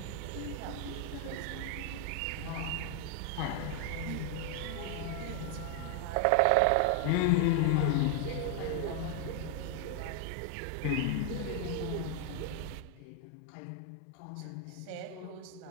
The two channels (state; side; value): different; both; correlation 0.00